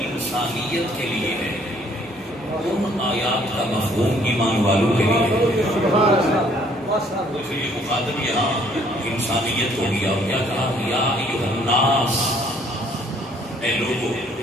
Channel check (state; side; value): normal; both; correlation 0.62